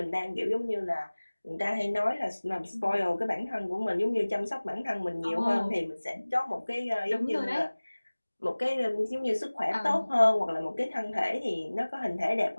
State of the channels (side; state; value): both; inverted; correlation -1.00